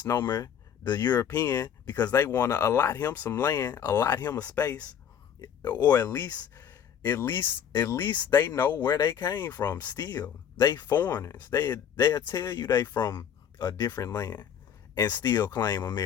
the European because they want to allot him some land, allot him a space, or at least they know where they came from. Still, they foreigners. They'll tell you they from a different land and still claim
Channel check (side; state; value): right; quieter; 8.6 dB